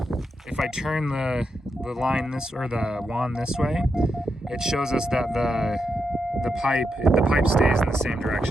the line this, or the wand this way, it shows us that the pipe stays in the same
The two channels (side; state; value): both; normal; correlation 0.84